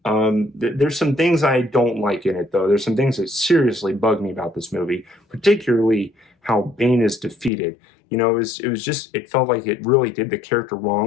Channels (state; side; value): drops out; right; at 7.5 s